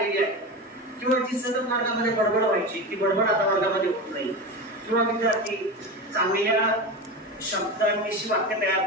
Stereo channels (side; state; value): both; normal; correlation 0.23